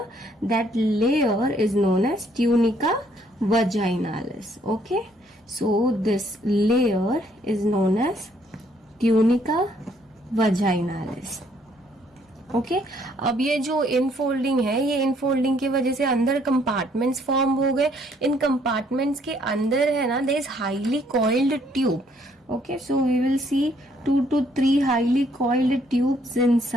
that layer is known as tunica vaginalis. Okay, so this layer is known as tunica vaginalis. Okay, अब ये जो इनफोल्डिंग है, ये इनफोल्डिंग की वजह से अंदर कंपार्टमेंट्स फॉर्म हो गए. इन कंपार्टमेंट्स के अंदर है ना, there is highly coiled tube. Okay, so we will see 2 to 3 highly coiled tubes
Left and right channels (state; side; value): normal; both; correlation 0.67